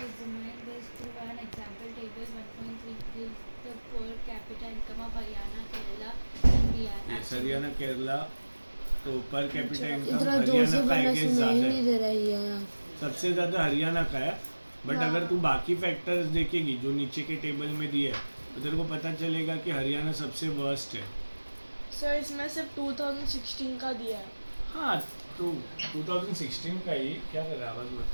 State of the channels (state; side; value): inverted; both; correlation -1.00